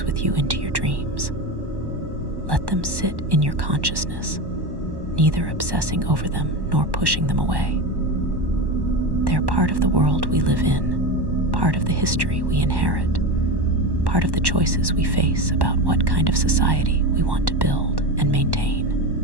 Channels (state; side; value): late; left; 1.1 ms